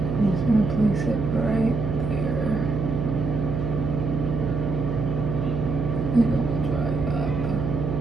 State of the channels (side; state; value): right; noise; hum, 2 dB below the sound